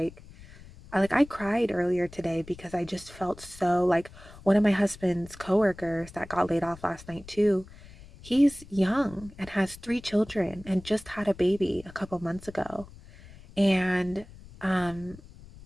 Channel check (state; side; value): noise; left; rumble, 19 dB below the sound